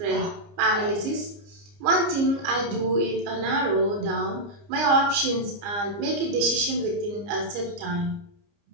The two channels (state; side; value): late; left; 29 ms